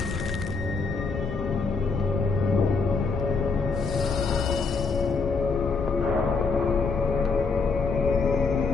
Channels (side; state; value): right; quieter; 4.5 dB